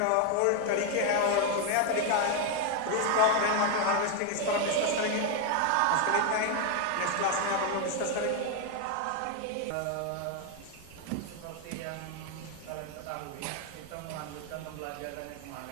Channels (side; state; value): both; different; correlation 0.01